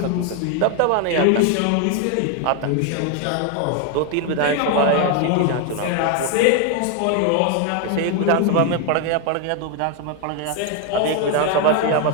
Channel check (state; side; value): different; both; correlation 0.01